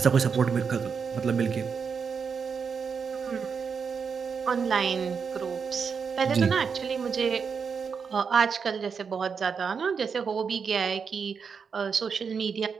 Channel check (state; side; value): quieter; left; 6.0 dB